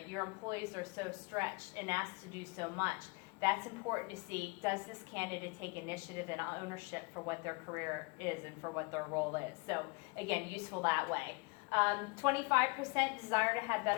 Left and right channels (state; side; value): quieter; right; 28.9 dB